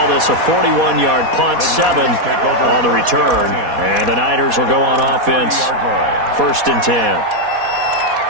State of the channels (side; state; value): left; late; 4.1 ms